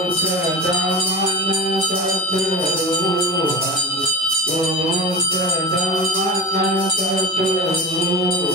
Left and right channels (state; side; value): normal; both; correlation 0.31